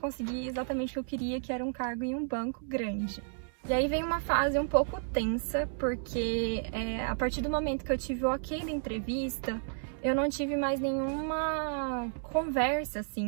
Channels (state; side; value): silent; left; 56 dB below the other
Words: exatamente o que eu queria, que era um cargo em um banco grande. E aí vem uma fase um pouco tensa, porque a partir do momento que eu tive o ok da entrevista, eu não tive mais nenhuma conversa,